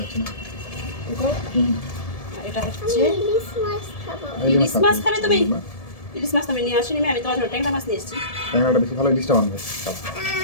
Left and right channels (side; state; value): right; late; 1.7 ms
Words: আছে না। এটা হচ্ছে ইলিশ মাছ। খাবে তুমি? ইলিশ মাছ তুমি নিয়ে আসিনি, আমি তোমার জন্য ট্যাংরা মাছ নিয়ে এসেছি। ট্যাংরাটা বেশি ভালো, ইলিশটা বানবে।